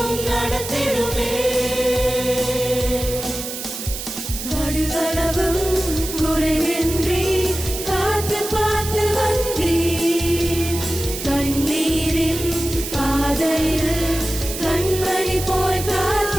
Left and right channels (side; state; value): right; noise; hiss, 7 dB below the sound